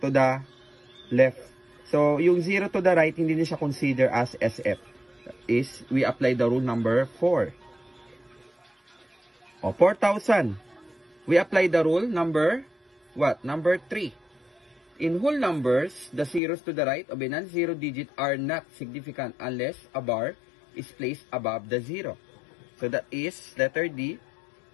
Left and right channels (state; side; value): drops out; right; at 16.4 s